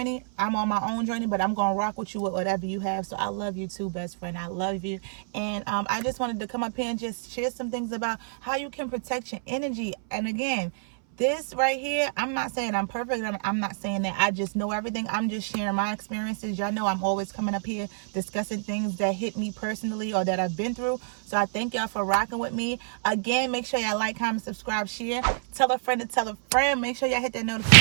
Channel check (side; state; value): left; silent; 60 dB below the other